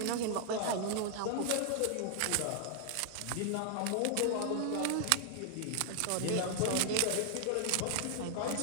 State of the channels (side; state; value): both; different; correlation 0.00